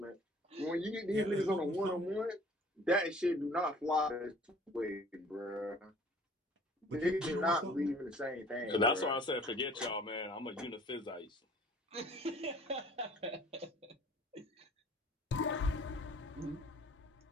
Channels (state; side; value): normal; both; correlation 0.52